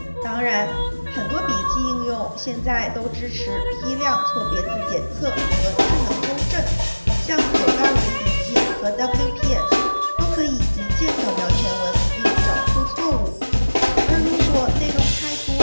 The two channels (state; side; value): inverted; both; correlation -1.00